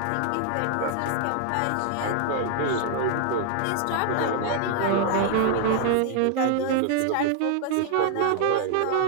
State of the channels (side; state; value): both; different; correlation 0.00